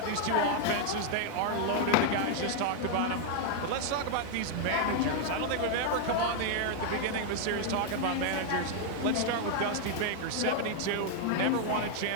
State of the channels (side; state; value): both; different; correlation 0.00